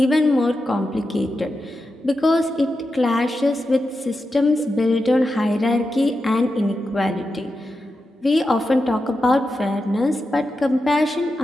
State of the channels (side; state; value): both; normal; correlation 0.89